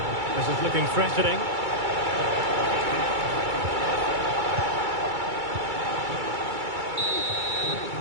This is looking threatening.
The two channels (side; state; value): left; late; 2.3 ms